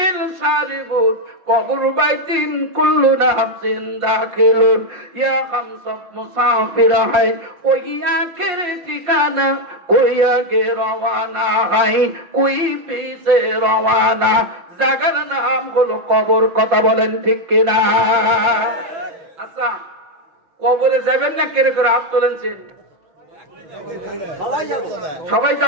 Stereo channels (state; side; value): late; left; 5.7 ms